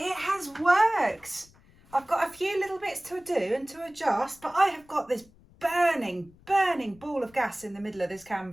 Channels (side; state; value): left; noise; rumble, 27 dB below the sound